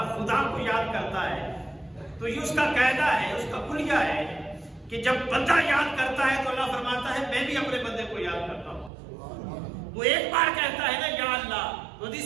خدا کو یاد کرتا ہے تو یہ اس کا قاعدہ ہے، اس کا کلیہ ہے کہ جب بندہ یاد کرتا ہے تو اللہ فرماتا ہے میں بھی اپنے بندے کو یاد کرتا ہوں۔ وہ ایک بار کہتا ہے نا یا اللہ،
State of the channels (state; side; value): drops out; left; at 8.9 s